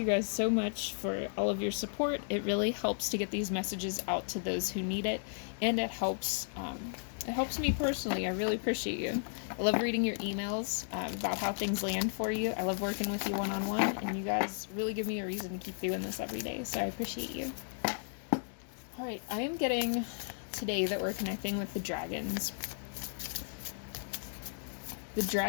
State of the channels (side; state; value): right; silent; digital silence